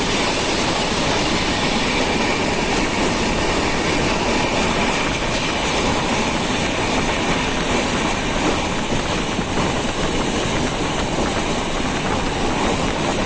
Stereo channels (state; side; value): identical; both; correlation 1.00